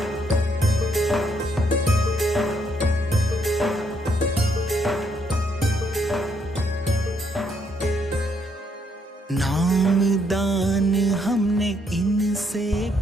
नाम दान हमने इनसे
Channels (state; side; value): normal; both; correlation 0.72